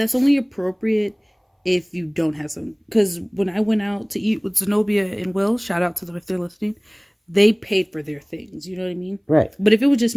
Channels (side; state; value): both; identical; correlation 1.00